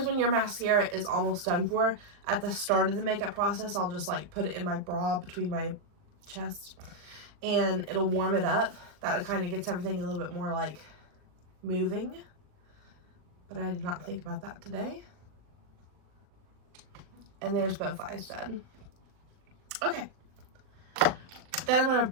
when your mascara is almost done for, at the start of the makeup process, I'll just like put it in my bra between my chest and it'll warm it up. That kind of gets everything a little bit more like moving. But I did not think about that today. And there's both eyes done. Okay. Then I'm going to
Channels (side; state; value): left; late; 39 ms